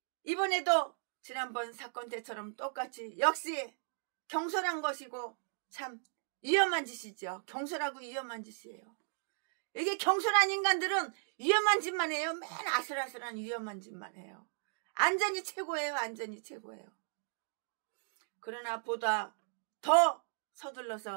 이번에도 지난번 사건 때처럼 똑같이 역시 경솔한 것이고 참 위험한 짓이죠. 경솔하고 위험한 짓이에요. 이게 경솔한 인간들은 위험한 짓만 해요. 맨 아슬아슬한 위험한 짓만 해요. 안전이 최고예요. 안전이 최고예요. 그러나 보다 더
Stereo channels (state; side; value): silent; left; digital silence